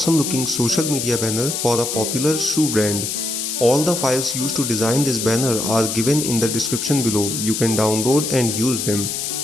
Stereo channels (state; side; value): noise; left; hiss, 3 dB below the sound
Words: looking social media banner for a popular shoe brand. All the files used to design this banner are given in the description below. You can download and use them.